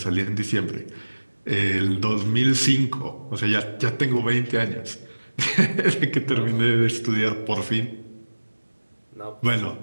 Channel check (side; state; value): both; inverted; correlation -1.00